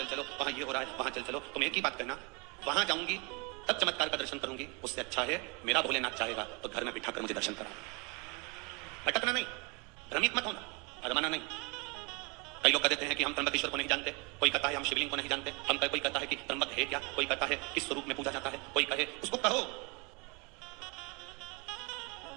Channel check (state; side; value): quieter; left; 30.3 dB